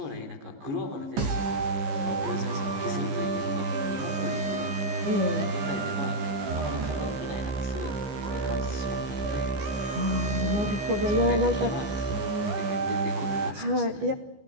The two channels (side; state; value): left; late; 15 ms